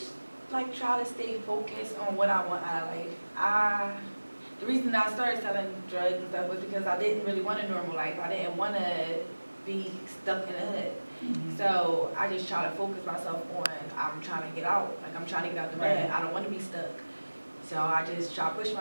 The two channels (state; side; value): inverted; both; correlation -1.00